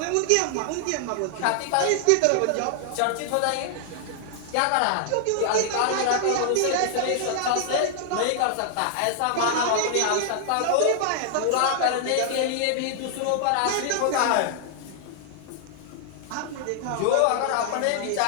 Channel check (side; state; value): both; different; correlation 0.00